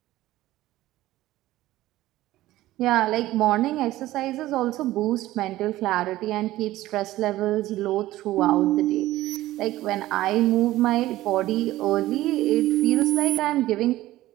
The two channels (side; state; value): left; quieter; 16.0 dB